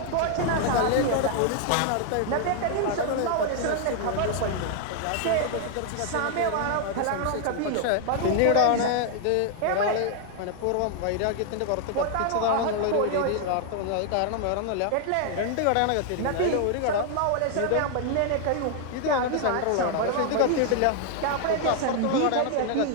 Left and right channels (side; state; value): both; different; correlation 0.00